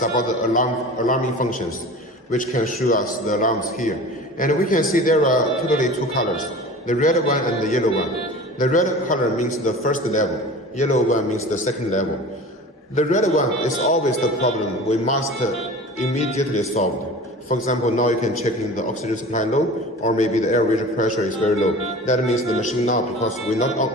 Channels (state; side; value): normal; both; correlation 0.38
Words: about the alarming functions, which can show us the alarms here. And we can see there are totally 2 colors, the red one and the yellow one. The red color means the first level, yellow one means the second level. The red one is always the problem we must immediately solve. For example, now you can check in the oxygen supply low, or maybe the airway pressure is very low. That means the machine now, because we're